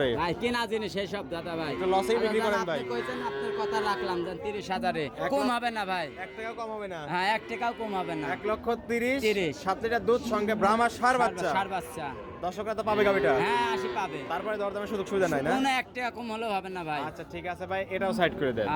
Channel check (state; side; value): identical; both; correlation 1.00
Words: ভাই কেনা জিনিস সেই সব দাদা ভাই। একটু লসেই বিক্রি করেন ভাই। আপনি কইছেন, আপনার কথা রাখলাম জান, 30,000-এ কম হবে না ভাই। 1 টাকাও কম হবে না। হ্যাঁ 1 টাকাও কম হবে না। 1,30,000, 7 লিটার দুধ, সঙ্গে ব্রাহ্মা সার বাচ্চা। ষাঁড় বাচ্চা। দর্শকরা তো পাবে গাবিটা। হ্যাঁ 80 পাবে। তারপরে দরদামের সুযোগ সুবিধা নাই না? কোনো 1 টাকা কম হলেও হবে না ভাই। আচ্ছা ঠিক আছে ভাই, এটাও সাইড করে দেন।